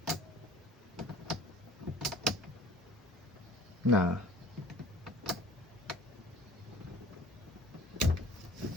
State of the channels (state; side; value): normal; both; correlation 0.47